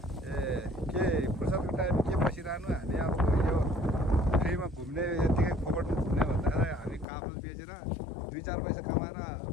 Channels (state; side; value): drops out; right; at 7.1 s